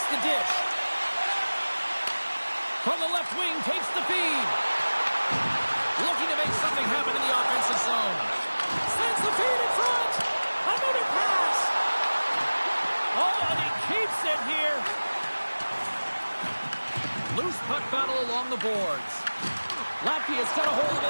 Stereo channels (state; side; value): inverted; both; correlation -1.00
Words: the dish. From the left wing, takes the feed. Looking to make something happen in the offensive zone. Sends the feed in front. Another pass. Oh, and he keeps it here. Loose puck battle along the boards. Latvia's got a hold of